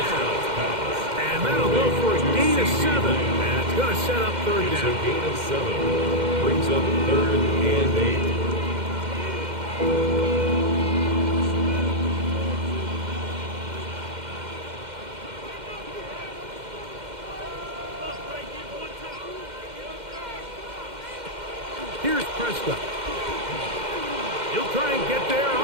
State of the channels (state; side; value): late; left; 2.1 ms